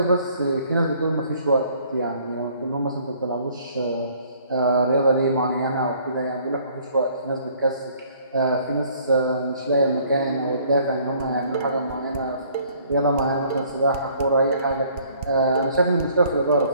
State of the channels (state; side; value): inverted; both; correlation -0.59